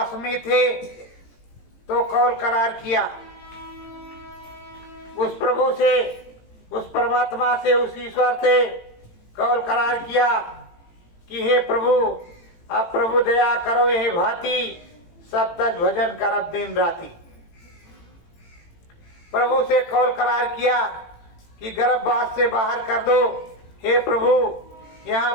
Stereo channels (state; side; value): late; right; 18 ms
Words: में थे तो कौल करार किया उस प्रभु से, उस परमात्मा से, उस ईश्वर से कौल करार किया कि हे प्रभु, अब प्रभु दया करो ये भांति सब तक भजन करब दिन राति। प्रभु से कौल करार किया कि गर्भवास से बाहर कर दो। हे प्रभु,